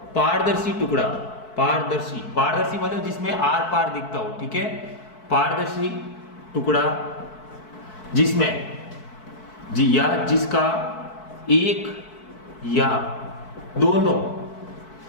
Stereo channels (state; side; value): late; right; 4.6 ms